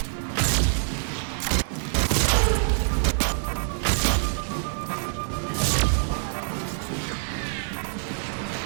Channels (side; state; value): left; silent; digital silence